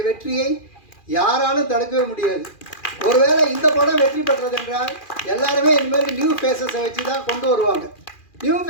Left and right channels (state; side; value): late; right; 2.4 ms